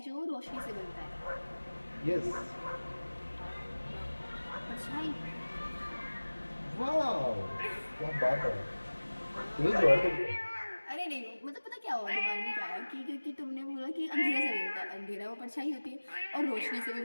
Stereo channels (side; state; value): both; inverted; correlation -1.00